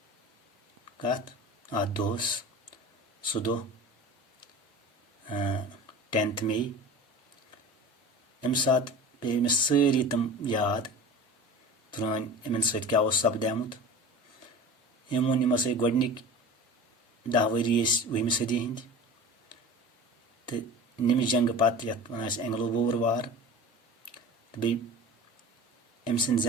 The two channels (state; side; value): normal; both; correlation 0.36